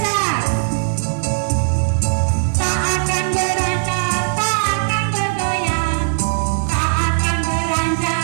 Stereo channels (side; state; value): left; silent; digital silence